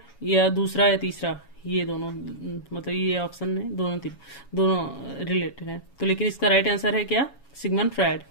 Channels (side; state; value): right; late; 7.2 ms